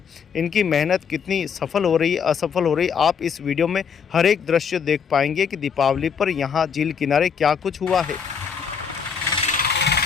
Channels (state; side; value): quieter; right; 6.7 dB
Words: इनकी मेहनत कितनी सफल हो रही है, असफल हो रही है, आप इस वीडियो में हर एक दृश्य देख पाएंगे कि दीपावली पर यहाँ झील किनारे क्या कुछ हुआ है।